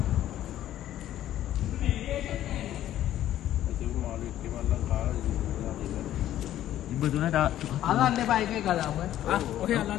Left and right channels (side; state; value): right; quieter; 12.5 dB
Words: ඉබ්බ දුනා තා. අල්ලන්න එපා එකේ කතාව. ඔහේ